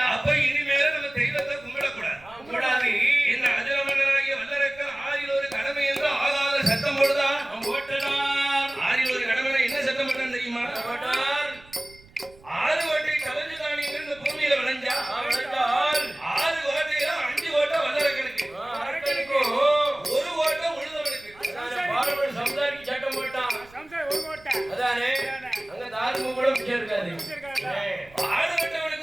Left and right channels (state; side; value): noise; right; rumble, 25 dB below the sound